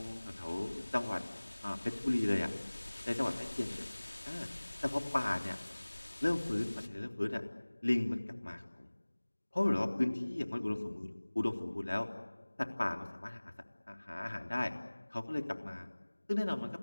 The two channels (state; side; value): inverted; both; correlation -1.00